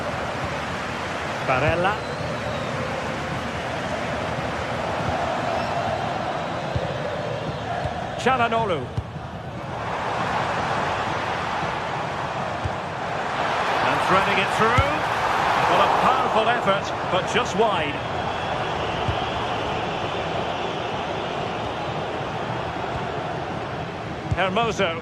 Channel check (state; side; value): identical; both; correlation 1.00